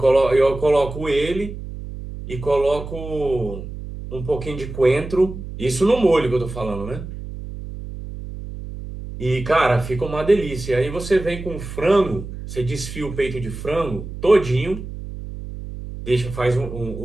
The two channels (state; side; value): noise; right; hum, 10 dB below the sound